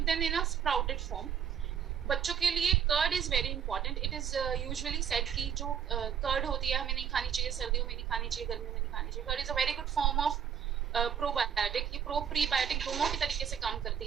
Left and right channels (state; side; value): quieter; left; 8.2 dB